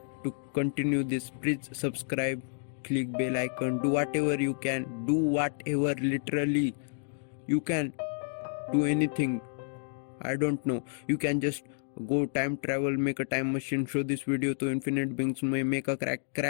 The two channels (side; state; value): right; silent; digital silence